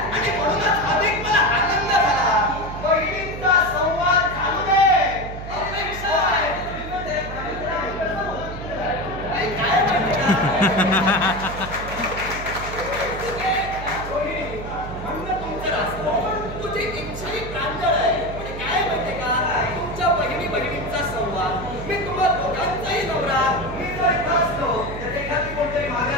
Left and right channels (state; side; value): noise; right; hum, 9 dB below the sound